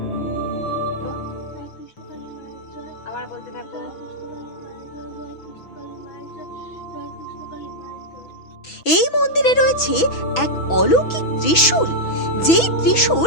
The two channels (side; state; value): right; late; 6.1 ms